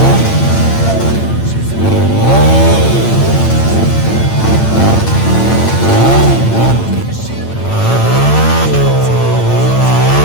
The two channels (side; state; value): right; late; 8.9 ms